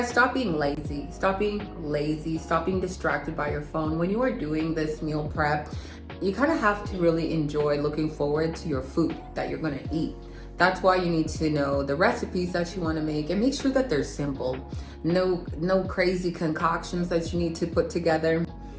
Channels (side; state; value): both; identical; correlation 1.00